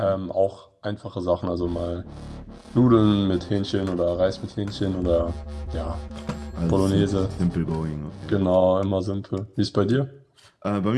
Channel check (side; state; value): both; identical; correlation 1.00